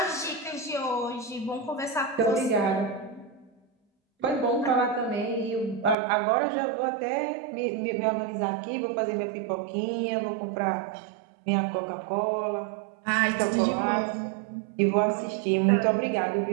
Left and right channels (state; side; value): drops out; left; at 6.0 s